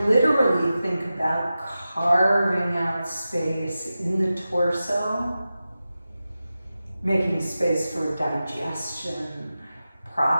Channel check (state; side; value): inverted; both; correlation -0.93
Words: literally think about carving out space in the torso, making space for digestion,